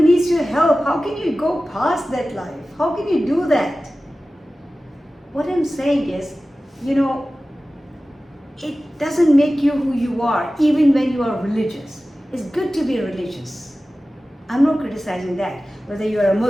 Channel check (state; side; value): normal; both; correlation 0.96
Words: needs your help. How can you go past that life? How can you do that? What I'm saying is, you know, it doesn't make you who you are, even when you are religious. It's good to be religious. I'm not criticizing that. Whether you are a